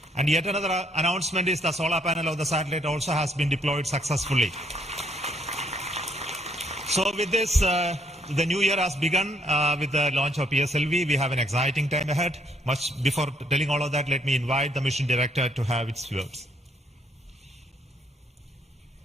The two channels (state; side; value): normal; both; correlation 0.69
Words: And yet another announcement is the solar panel of the satellite also has been deployed successfully. So with this, the new year has begun with the launch of PSLV. We have an exciting time ahead. Much before telling all of that, let me invite the mission director to have its words.